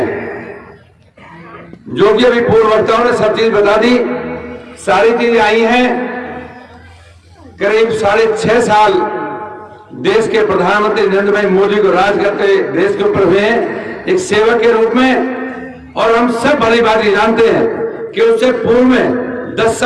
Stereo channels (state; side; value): identical; both; correlation 1.00